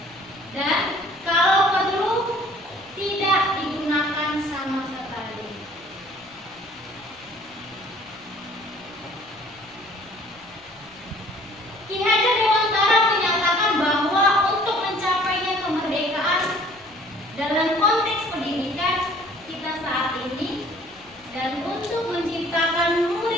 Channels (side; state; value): left; noise; rumble, 29 dB below the sound